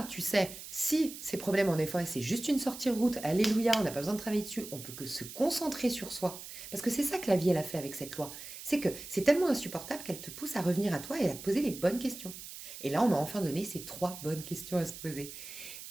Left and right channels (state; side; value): noise; right; hiss, 12 dB below the sound